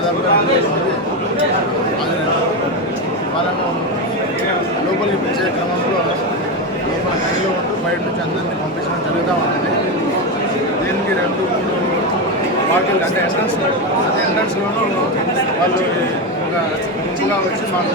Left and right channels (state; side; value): normal; both; correlation 0.13